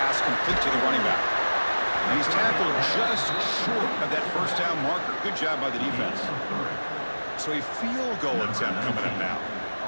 complete to the running back. And he's tackled just short of that first down marker. Good job by the defense. So a field goal attempt coming up now.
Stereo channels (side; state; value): both; inverted; correlation -1.00